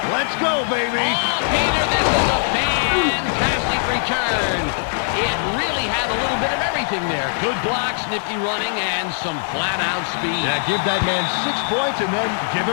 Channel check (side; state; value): right; silent; 65 dB below the other